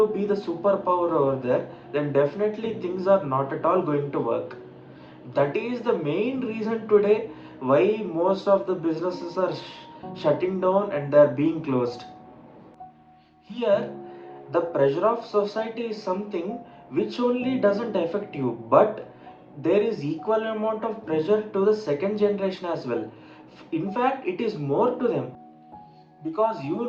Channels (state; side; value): identical; both; correlation 1.00